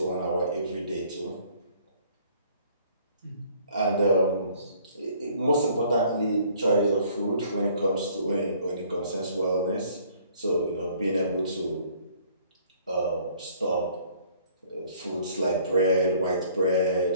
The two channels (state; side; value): inverted; both; correlation -0.58